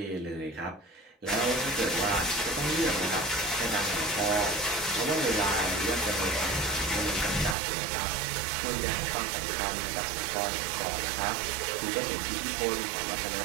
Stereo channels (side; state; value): left; drops out; at 7.6 s